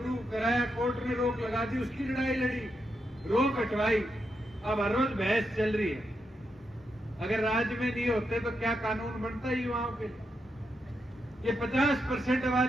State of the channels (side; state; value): both; normal; correlation 0.83